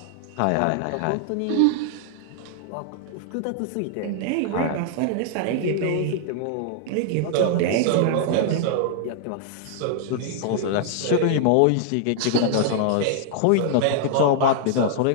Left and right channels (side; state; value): both; different; correlation -0.01